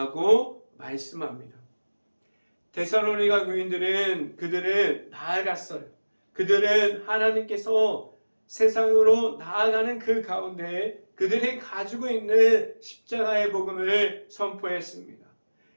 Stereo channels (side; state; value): both; inverted; correlation -1.00